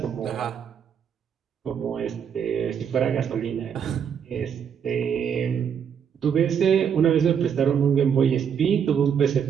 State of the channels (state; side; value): quieter; left; 7.7 dB